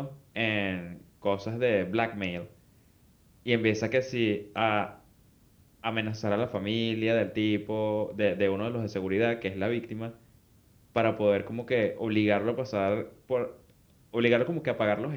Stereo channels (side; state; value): both; identical; correlation 1.00